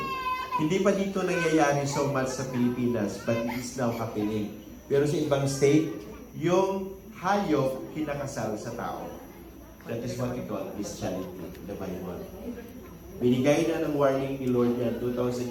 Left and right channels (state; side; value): identical; both; correlation 1.00